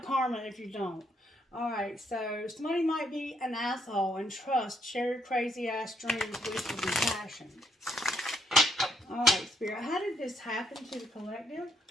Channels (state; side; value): normal; both; correlation 0.71